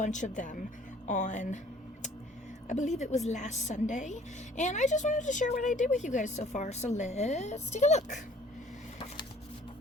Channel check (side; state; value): both; normal; correlation 0.54